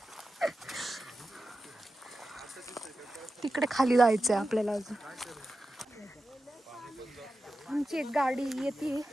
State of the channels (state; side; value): normal; both; correlation 0.92